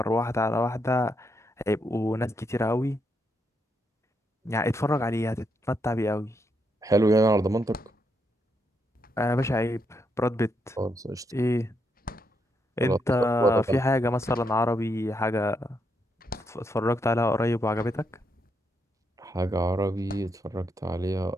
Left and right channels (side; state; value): both; normal; correlation 0.79